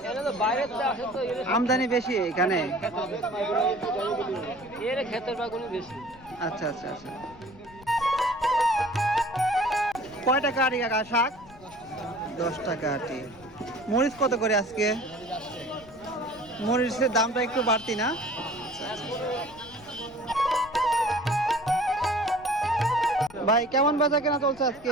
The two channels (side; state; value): left; noise; rumble, 22 dB below the sound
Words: এটা তো বাইরের থেকে আসে তো আমদানি বেশি এখানে? এর ক্ষেতের বাগুনি বেশি। আচ্ছা আচ্ছা আচ্ছা। কয় টাকা আটি কাকা শাক? 10 টাকা আটি। মরিচ কত করে আজকে? মরিচের দামটা একটু বাড়তি না? ভাই, কেমন বেচা কেনা চলছে আজকে?